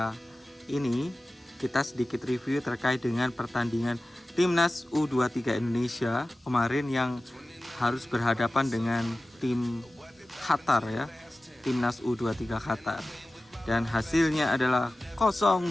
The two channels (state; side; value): normal; both; correlation 0.96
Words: ini kita sedikit review terkait dengan pertandingan Timnas U23 Indonesia kemarin yang harus berhadapan dengan tim Qatar ya, Timnas U23 Qatar. Dan hasilnya adalah